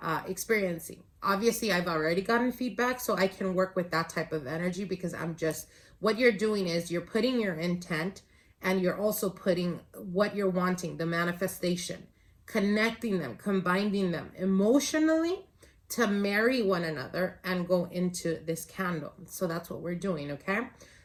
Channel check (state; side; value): identical; both; correlation 1.00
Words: Obviously, I've already gotten feedback, so I can work with that type of energy, because what you're doing is you're putting your intent, and you're also putting what you're wanting, the manifestation, connecting them, combining them emotionally to marry one another and go into this candle. So that's what we're doing, okay?